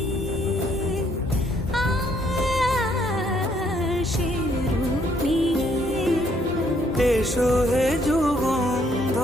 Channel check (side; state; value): both; normal; correlation 0.68